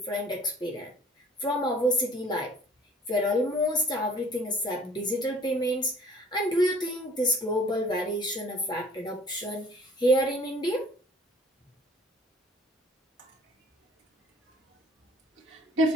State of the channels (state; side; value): normal; both; correlation 0.52